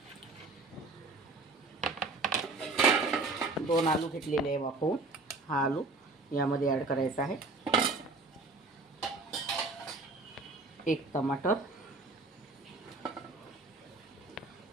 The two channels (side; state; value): left; quieter; 3.4 dB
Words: 2 आलू घेतलेले आहे वाफवून। हा आलू यामध्ये ॲड करायचा आहे। 1 टमाटर,